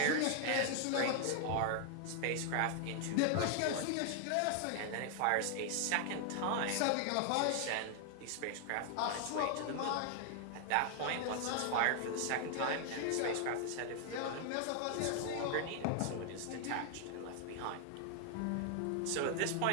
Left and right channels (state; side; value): different; both; correlation 0.00